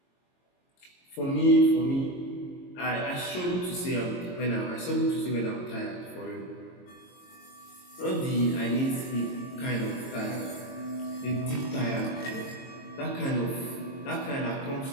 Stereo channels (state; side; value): late; right; 22 ms